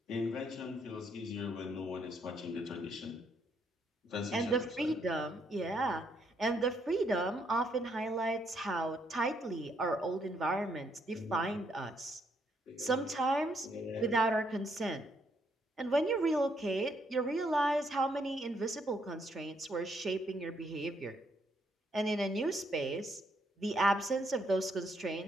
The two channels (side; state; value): both; normal; correlation 0.73